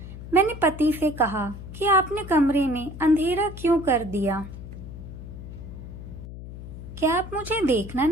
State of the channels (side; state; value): left; noise; hum, 12 dB below the sound